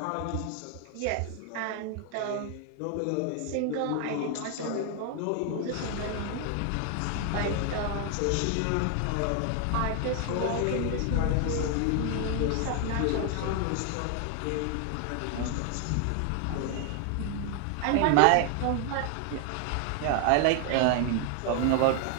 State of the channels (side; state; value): both; different; correlation 0.00